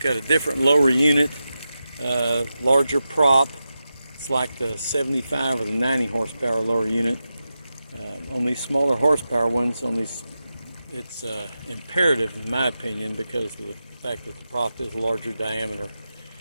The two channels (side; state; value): both; inverted; correlation -0.91